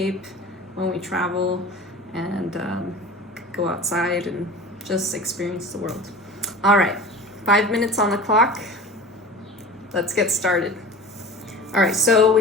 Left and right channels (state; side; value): normal; both; correlation 0.36